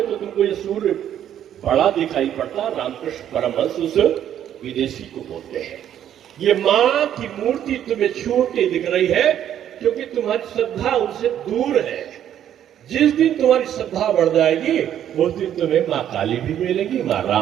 तो तुमको ये सूर्य बड़ा दिखाई पड़ता। रामकृष्ण परमहंस उस विदेशी को बोलते हैं ये मां की मूर्ति तुम्हें छोटी दिख रही है क्योंकि तुम्हारी श्रद्धा उनसे दूर है। जिस दिन तुम्हारी श्रद्धा बढ़ जाएगी उस दिन तुम्हें मां काली भी मिलेगी, मां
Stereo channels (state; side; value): quieter; left; 10.5 dB